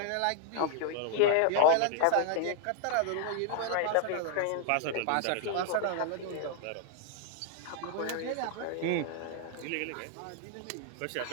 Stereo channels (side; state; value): both; different; correlation 0.00